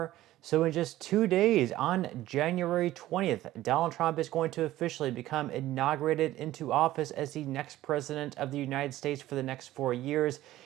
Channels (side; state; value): left; quieter; 15.2 dB